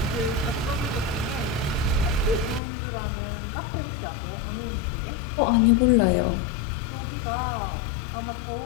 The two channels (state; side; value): drops out; right; at 2.6 s